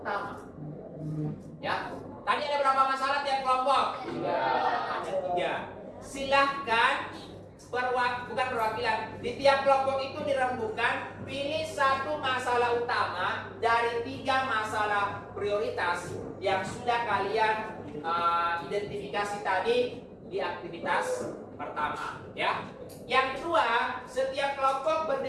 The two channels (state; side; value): identical; both; correlation 1.00